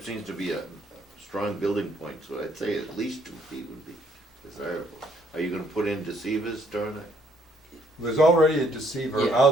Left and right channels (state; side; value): normal; both; correlation 0.67